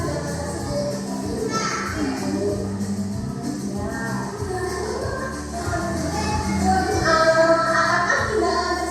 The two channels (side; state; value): both; identical; correlation 1.00